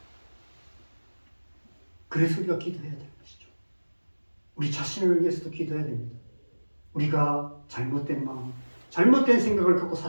그래서 우리가 기도해야 되는 것이죠. 우리 자신을 위해서도 기도해야 됩니다. 우리가 잘못된 마음, 잘못된 생각을 갖고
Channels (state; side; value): inverted; both; correlation -1.00